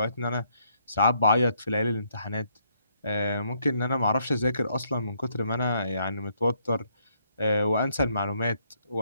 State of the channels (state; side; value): inverted; both; correlation -0.73